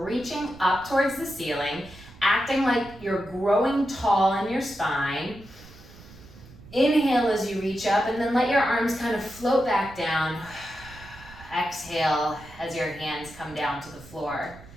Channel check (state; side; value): noise; right; rumble, 20 dB below the sound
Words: up towards the ceiling, acting like you're growing tall in your spine. Inhale as you reach up, and then let your arms kind of float back down. Exhale as your hands come down to the floor.